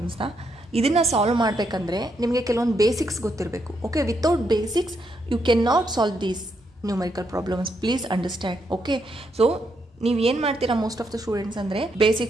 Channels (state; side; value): normal; both; correlation 0.78